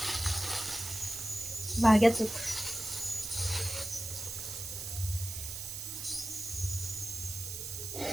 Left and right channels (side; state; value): right; noise; hiss, 6 dB below the sound